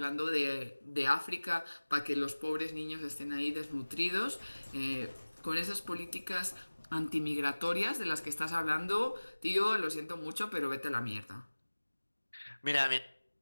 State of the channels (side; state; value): both; inverted; correlation -1.00